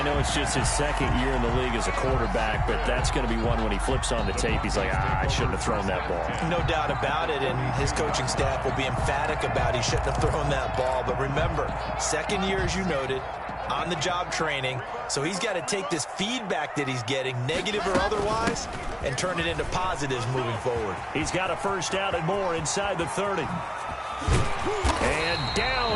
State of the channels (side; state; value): both; identical; correlation 1.00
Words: know it's just his second year in the league as a quarterback, but that's going to be one when he flips on the tape. He's like, I shouldn't have thrown that ball. No doubt about it, and his coaching staff will be emphatic about he shouldn't have thrown that ball. But remember, second year, as you noted, on-the-job training, so he's got to take this feedback that he's getting, negative or otherwise, and turn it into positives moving forward. He's got a first down and more inside the 30. And